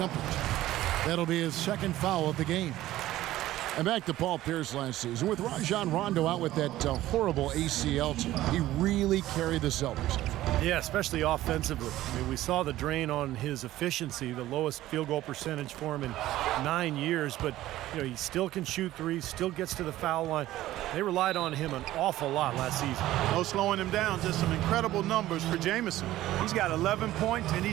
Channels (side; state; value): left; quieter; 15.1 dB